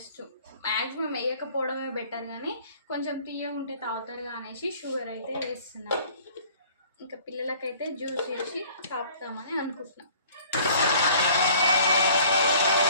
మ్యాక్సిమం వేయకపోవడమే బెటర్, కానీ కొంచెం తీయ ఉంటే తాగుతారుగా అనేసి షుగర్ అయితే వేస్తున్నా. ఇంకా పిల్లలకైతే జ్యూస్ చేసి తాపుతామని అనుకుంటున్నా.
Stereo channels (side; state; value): both; inverted; correlation -0.53